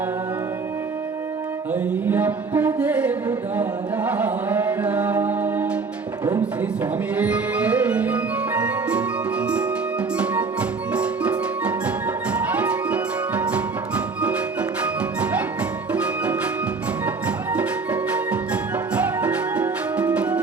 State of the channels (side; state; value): left; quieter; 4.5 dB